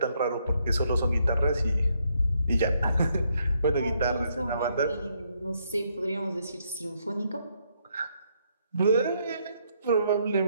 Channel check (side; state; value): both; inverted; correlation -0.73